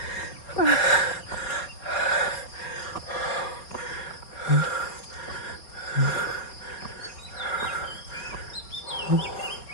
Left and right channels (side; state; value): right; late; 4.6 ms